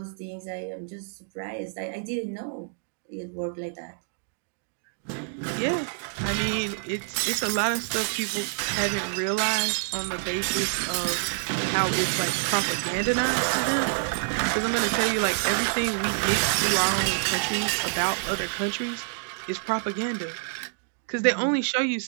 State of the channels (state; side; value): silent; left; digital silence